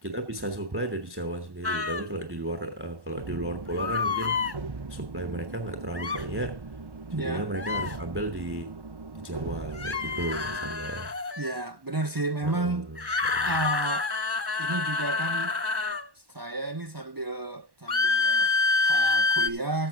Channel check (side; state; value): left; late; 1.1 ms